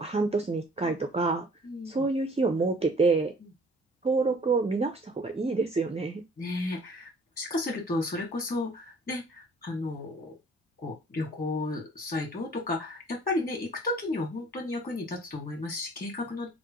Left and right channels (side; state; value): both; normal; correlation 0.54